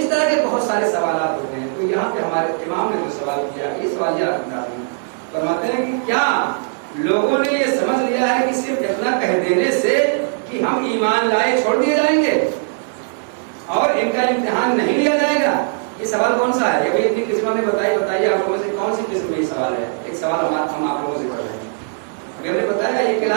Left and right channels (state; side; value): silent; left; digital silence